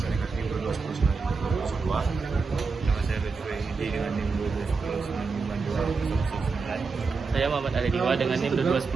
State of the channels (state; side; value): quieter; left; 4.6 dB